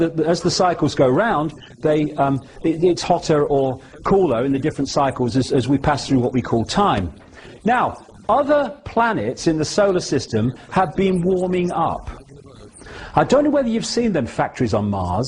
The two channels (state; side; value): identical; both; correlation 1.00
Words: as the cycles go round, it's hotter or cooler in the different cycles as we pass through what we call time. Now, other planets in the solar system have been warming up. I don't know whether you've seen them factories on